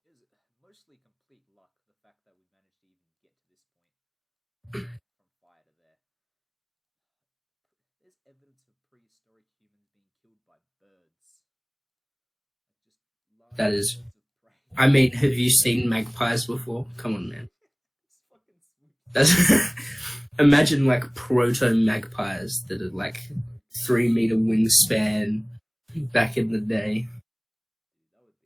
It was mostly complete luck, the fact that we managed to even get to this point from fire to there. There's evidence of prehistoric humans being killed by birds. Like, just large That is birds of prey. I mean, have you seen magpies before? Come on, man. It's fucking sweet. That's imagine like proto magpies that are like 3 meter wingspan back in the day.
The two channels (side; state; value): both; identical; correlation 1.00